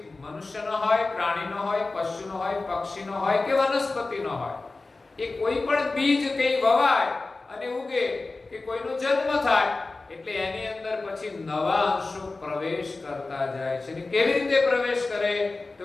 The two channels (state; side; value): quieter; right; 3.5 dB